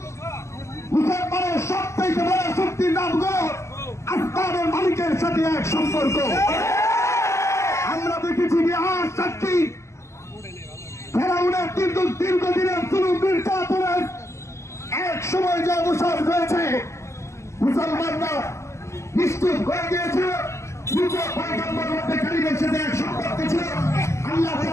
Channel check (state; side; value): late; right; 0.13 ms